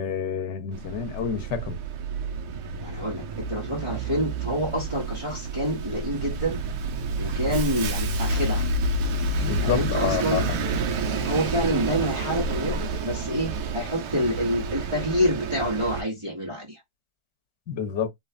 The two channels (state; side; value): late; left; 1.4 ms